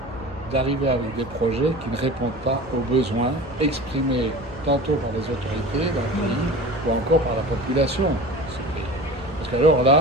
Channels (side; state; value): both; normal; correlation 0.36